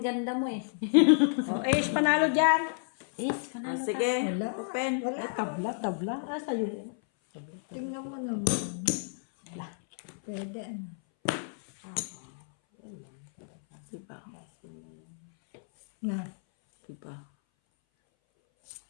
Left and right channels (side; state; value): right; silent; 57 dB below the other